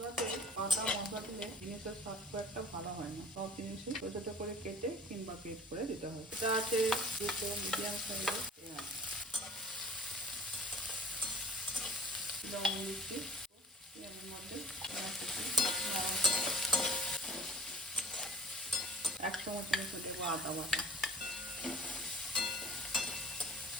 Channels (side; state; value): both; normal; correlation 0.47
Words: আদা মশলা দিলে জিনিসের স্বাদ খুব একটা ভালো হয় না। সব জিনিসই ছোটো ছোটো করে কেটে কিংবা পেট করে দিতে হয়। এটা আছে দুটো মিডিয়াম সাইজের পেঁয়াজ, লবণ দিচ্ছি, পেঁয়াজের মধ্যে 1 চামচের মতো দেবো আদা বাটা,